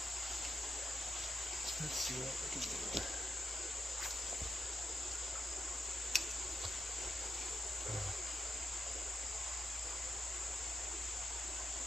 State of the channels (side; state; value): both; normal; correlation 0.83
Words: Let's see what we can do.